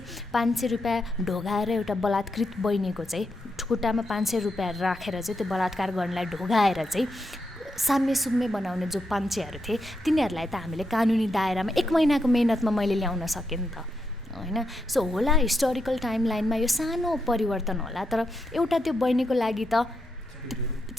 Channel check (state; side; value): normal; both; correlation 0.83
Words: 500 रुपियाँ ढोगाएर एउटा बलात्कृत बहिनीको चाहिँ खुट्टामा 500 रुपियाँ राखेर चाहिँ त्यो बलात्कार गर्नलाई ढोगाएर चाहिँ साम्य सुम्य बनाउने जो पञ्चेहरू थिए तिनीहरूलाई त हामीले कानुनी दायरामा 1 महिनाको मेहनतमा मैले ल्याउन सकेँ नि त होइन सो होला हिस्टोरिकल टाइमलाइनमा यो सानो परिवर्तन होला तर एउटा त्यो बहिनीको लागि त